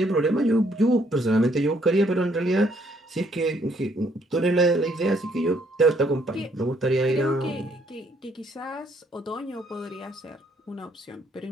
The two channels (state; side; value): normal; both; correlation 0.68